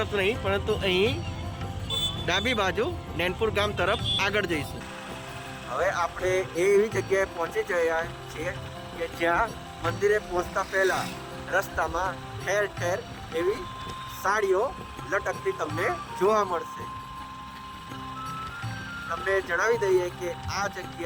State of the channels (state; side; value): identical; both; correlation 1.00